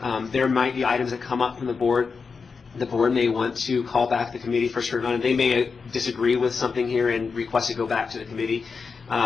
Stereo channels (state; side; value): quieter; right; 5.1 dB